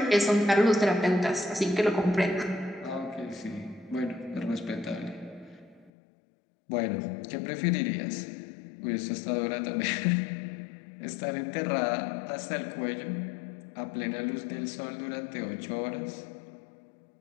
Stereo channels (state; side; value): drops out; right; at 5.9 s